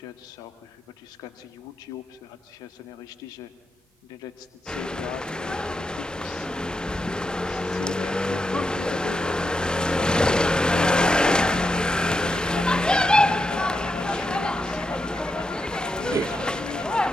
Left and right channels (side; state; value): both; normal; correlation 0.86